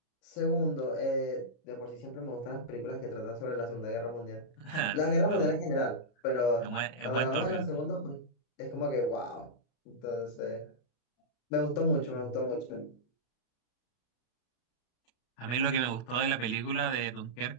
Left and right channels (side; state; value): right; late; 32 ms